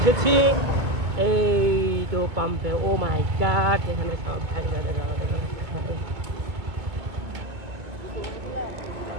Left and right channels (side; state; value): left; late; 2.0 ms